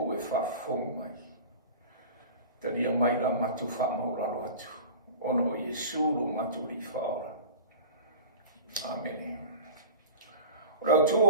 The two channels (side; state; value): both; inverted; correlation -0.34